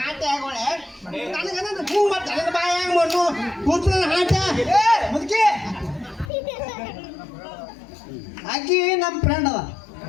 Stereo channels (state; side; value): drops out; right; at 6.3 s